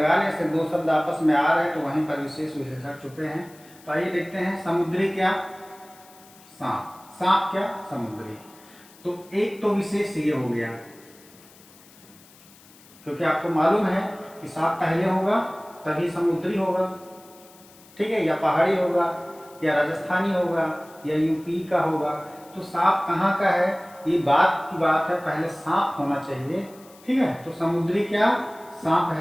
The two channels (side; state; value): left; noise; hiss, 25 dB below the sound